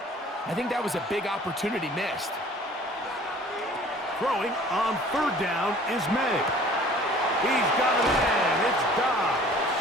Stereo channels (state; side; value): normal; both; correlation 0.50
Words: I think that was a big opportunity missed. Throwing on 3rd down is May. He's got it in. It's Dobbs.